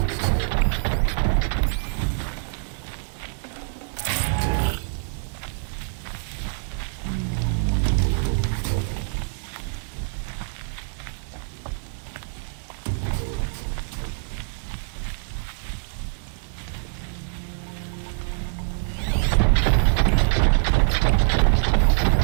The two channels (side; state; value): left; silent; digital silence